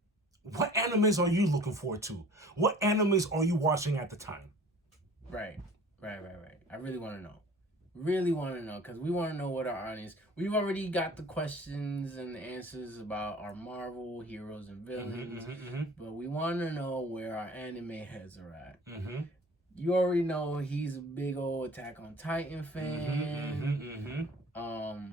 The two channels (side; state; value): both; normal; correlation 0.47